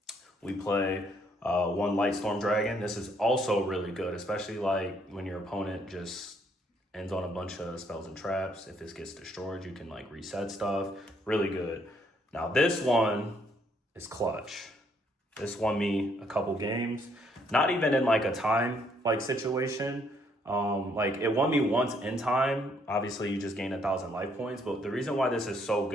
We play 1 Light Storm Dragon. This is also really good, especially like when your opponent just ends on a bunch of spells and traps. If this gets destroyed, you can like reset stuff. Really good. Now this one is clutch. This won me a couple games. Not even in like a time like situation. Like it won me once in time. Obviously you just gain 1,000 life points, but the reason why this is so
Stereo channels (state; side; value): normal; both; correlation 0.69